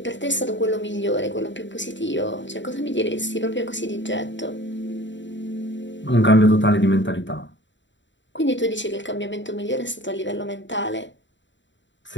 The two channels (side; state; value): right; late; 0.54 ms